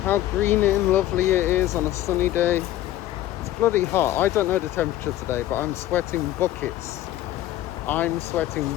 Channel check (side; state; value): right; quieter; 13.9 dB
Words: how green and lovely it is on a sunny day? It's bloody hot. I don't know the temperature today, but I'm sweating buckets. I'm sweating